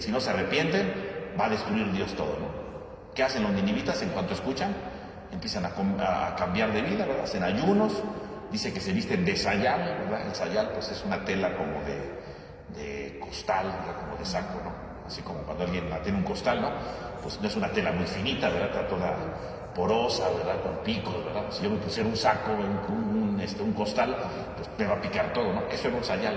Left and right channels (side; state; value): both; identical; correlation 1.00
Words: no se arrepienten, va a destruir Dios todo, ¿no? ¿Qué hacen los ninivitas en cuanto escuchan? Empiezan a cambiar de vida, ¿verdad? Hacen ayunos, dice que se visten de sayal, ¿verdad? El sayal pues es una tela como de costal, ¿verdad?, como de saco, ¿no? Así como cuando alguien tiene un costal, ¿no? Pues no es una tela muy finita, ¿verdad? Está toda porosa, ¿verdad?, con picos, ¿verdad? Si yo me pusiera un saco, un costal, pues me va a picar todo, ¿no? Eso era un